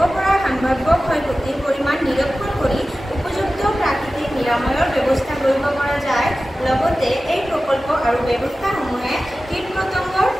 পৰা সম্ভাৱ্য ক্ষয়ক্ষতিৰ পৰিমাণ নিৰীক্ষণ কৰি উপযুক্ত প্ৰাকৃতিক নিৰাময়ৰ ব্যৱস্থা কৰিব পৰা যায়। লগতে এই প্ৰকল্প আৰু ব্যৱস্থাসমূহে কীট-পতংগৰ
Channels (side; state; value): both; normal; correlation 0.95